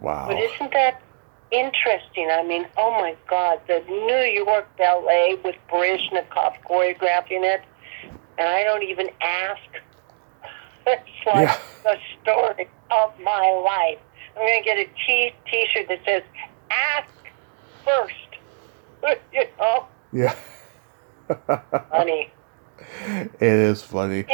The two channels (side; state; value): left; silent; digital silence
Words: But isn't that interesting? I mean, oh my God, the New York Ballet with Baryshnikov choreographing it, and I don't even ask. It's like the story of my life. I'm going to get a T-shirt that says, ask first. You know? Yeah. Funny. It is funny.